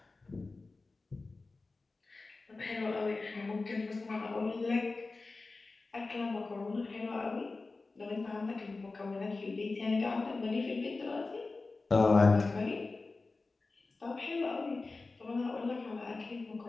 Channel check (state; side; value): quieter; right; 3.6 dB